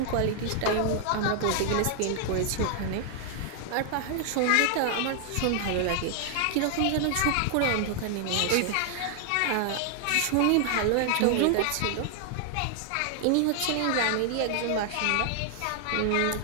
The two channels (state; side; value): different; both; correlation 0.00